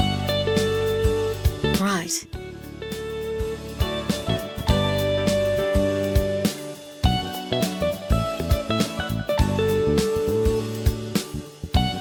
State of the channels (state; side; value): identical; both; correlation 1.00